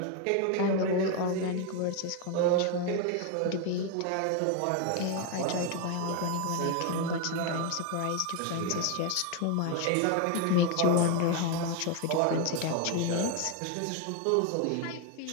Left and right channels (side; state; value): both; different; correlation 0.01